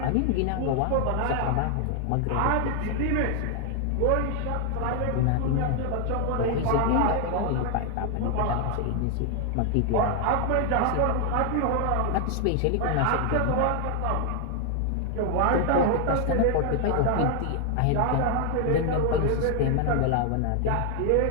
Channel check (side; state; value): both; different; correlation 0.00